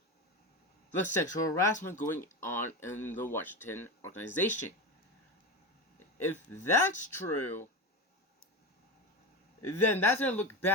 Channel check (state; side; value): normal; both; correlation 0.22